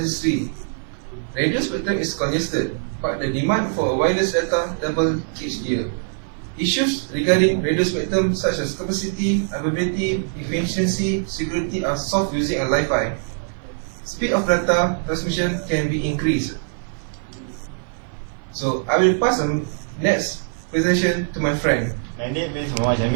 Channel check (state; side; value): silent; left; digital silence